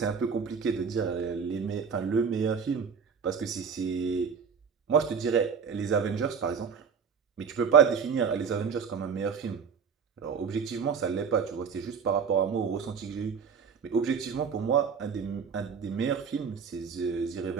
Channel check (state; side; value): quieter; left; 6.3 dB